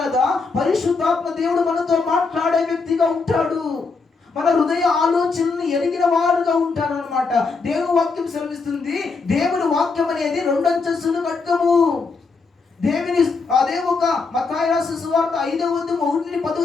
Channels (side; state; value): right; quieter; 4.4 dB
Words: పరిశుద్ధాత్మ దేవుడు మనతో మాట్లాడే వ్యక్తిగా ఉంటాడు. మన హృదయ ఆలోచనలు ఎరిగిన వారుగా ఉంటాడు అనమాట. దేవుని వాక్యం సెలవిస్తుంది, దేవుని వాక్యం అనేది 2 అంచెల ఖడ్గము. దేవుని అదే ఒక మత్తయి రాసిన సువార్త 5వ అధ్యాయం 1-10